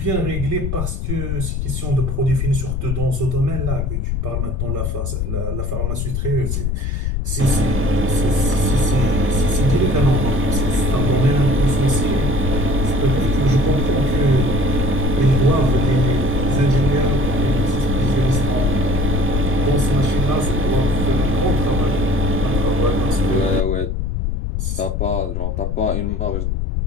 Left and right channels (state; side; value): noise; left; rumble, 1 dB below the sound